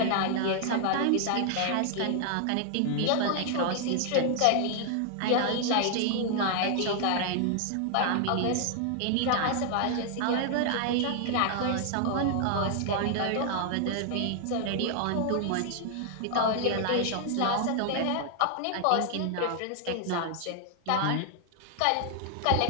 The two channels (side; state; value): both; different; correlation 0.00